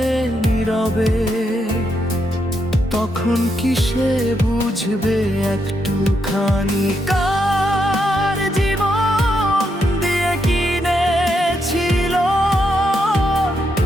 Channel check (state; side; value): normal; both; correlation 0.80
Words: নীরবে, তখন কি সে বুঝবে একটুখানি কার জীবন দিয়ে কিনেছিল